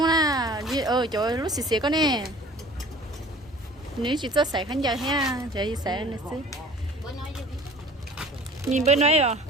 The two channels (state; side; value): normal; both; correlation 0.47